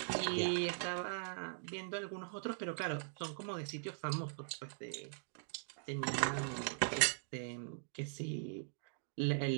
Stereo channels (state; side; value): silent; left; digital silence